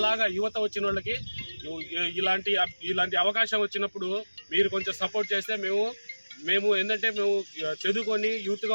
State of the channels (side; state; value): both; inverted; correlation -1.00